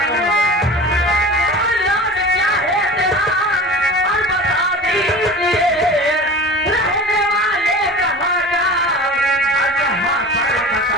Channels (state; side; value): normal; both; correlation 0.36